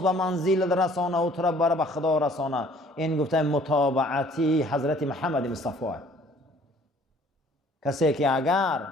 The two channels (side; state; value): both; normal; correlation 0.56